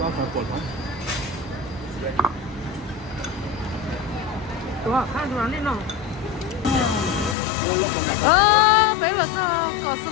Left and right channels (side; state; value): right; drops out; at 7.4 s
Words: Đúng rồi, hai đứa lên nào. Đấy là có